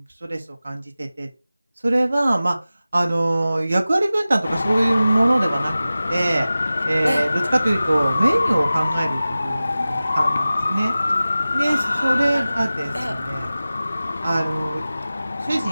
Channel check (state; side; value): inverted; both; correlation -0.96